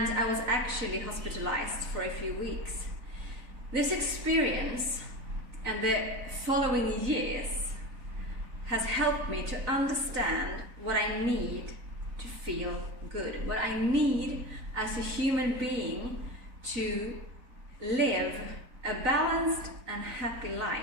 I was actually hospitalized for a few weeks. This experience and the following years has helped me to understand what I need to feel good, what I need as a human being to live a balanced and happy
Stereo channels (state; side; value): late; left; 4.0 ms